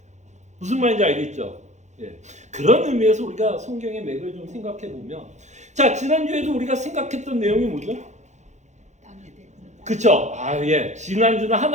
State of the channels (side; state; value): left; late; 0.34 ms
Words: 무슨 말인지 알겠죠? 예. 그런 의미에서 우리가 성경의 맥을 좀 생각해 보면, 자, 지난주에도 우리가 생각했던 내용이 뭐죠? 그쵸? 예. 지난주는